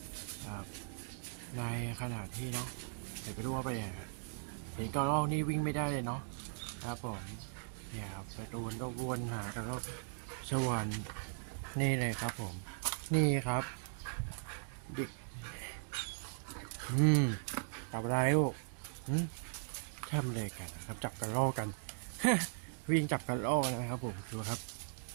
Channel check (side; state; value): left; silent; digital silence